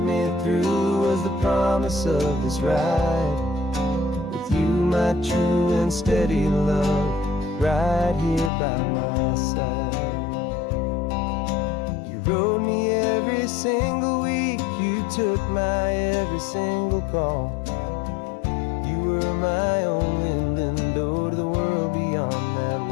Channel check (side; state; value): right; drops out; at 8.5 s